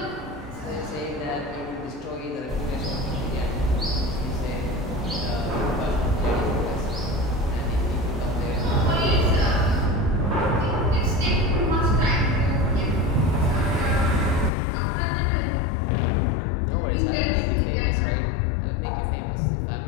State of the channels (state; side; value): drops out; right; at 14.5 s